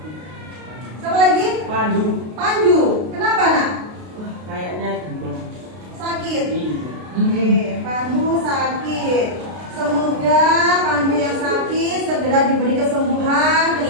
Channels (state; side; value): late; left; 32 ms